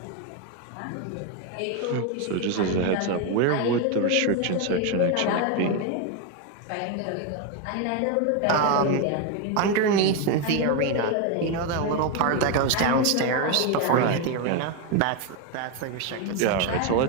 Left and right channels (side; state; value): both; different; correlation 0.02